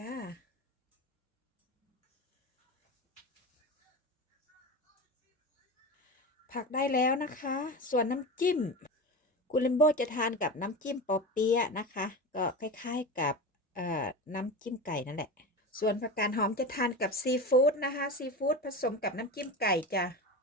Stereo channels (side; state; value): both; normal; correlation 0.26